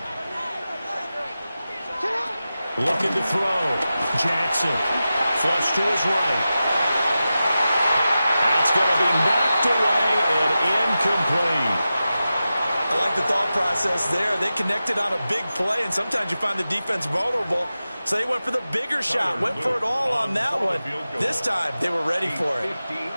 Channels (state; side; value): inverted; both; correlation -0.93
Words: Looking to throw. Jackson. Flush to his right. That's going to be knocked away and incomplete. I like the thought process there. They connected on a big play, and sometimes you find the defense vulnerable. So they went for the bigger shot, went for it all on that one. This time, they were ready for it.